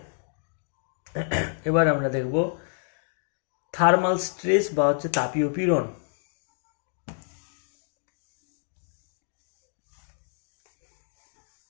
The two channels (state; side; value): silent; right; digital silence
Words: এবার আমরা দেখব থার্মাল স্ট্রেস বা হচ্ছে তাপীয় পীড়ন।